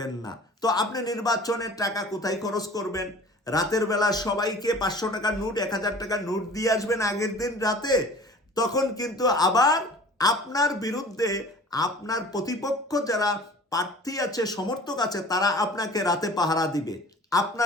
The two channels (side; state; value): both; normal; correlation 0.44